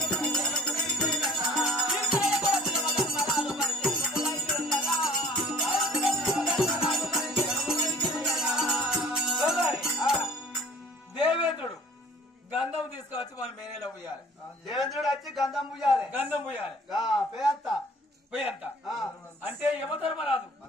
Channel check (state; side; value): normal; both; correlation 0.51